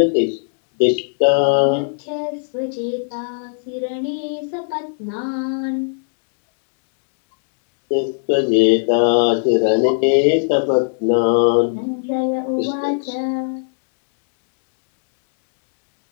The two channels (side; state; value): right; silent; digital silence